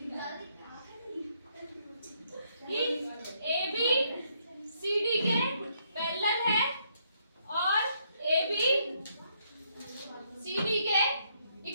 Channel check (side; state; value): both; inverted; correlation -0.72